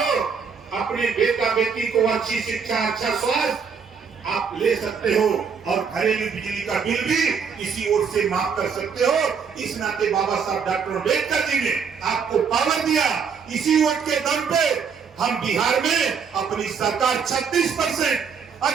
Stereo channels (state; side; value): quieter; left; 6.1 dB